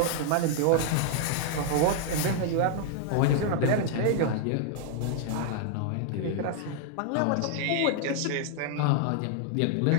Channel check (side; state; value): both; different; correlation 0.00